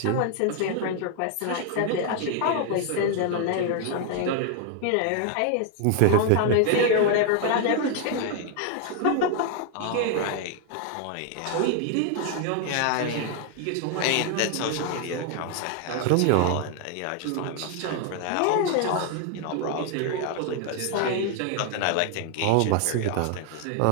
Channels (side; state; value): both; different; correlation 0.00